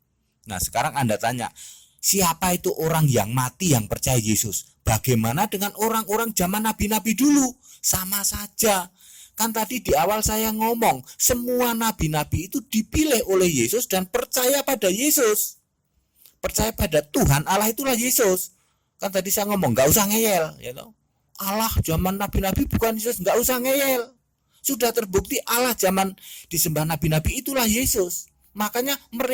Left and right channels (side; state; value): both; identical; correlation 1.00